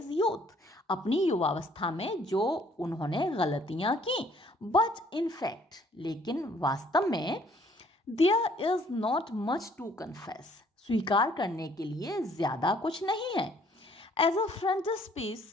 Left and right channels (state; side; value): normal; both; correlation 0.61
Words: youth, अपनी युवावस्था में जो उन्होंने गलतियां की। बट इन फैक्ट, लेकिन वास्तव में, there is not much to confess, स्वीकार करने के लिए ज्यादा कुछ नहीं है। As a frontispiece